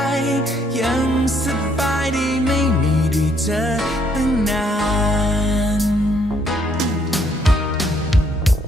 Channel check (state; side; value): normal; both; correlation 0.68